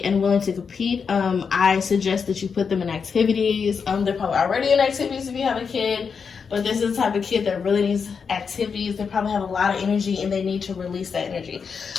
and willing to compete. I suggest that you put them in activities. They're probably already in activities if you have a kid, but this is the type of kid that really needs activities. They probably have a lot of energy and they need to release that energy.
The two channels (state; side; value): quieter; right; 5.9 dB